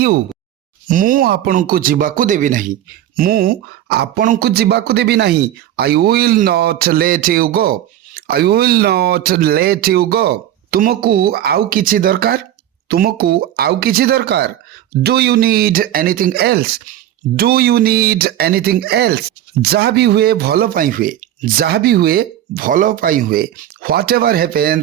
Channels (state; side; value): quieter; left; 12.1 dB